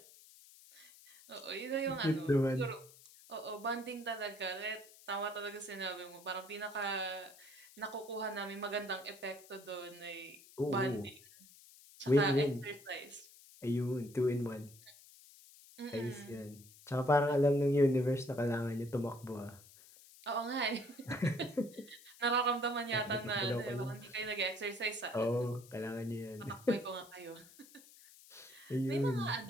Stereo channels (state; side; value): noise; left; hiss, 22 dB below the sound